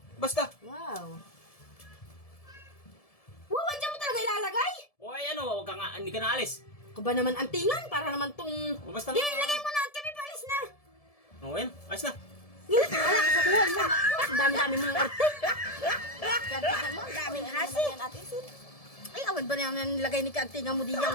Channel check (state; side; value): late; right; 1.7 ms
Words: Basta. Wow. Wow, andyan mo talaga ilalagay? Oy, ano, wag ka nga, hindi ka naalis. Ako ba naman antingan? Para naman tong... O, basta Di, lagay mo na at kami paalis na. O, yan, ayos na. Wala ka sa buwan mo. Ang dami-dami mong arte. Kantingan mo, ang daming hasi. Ay, awan ba naman nilagay ni kantingan mo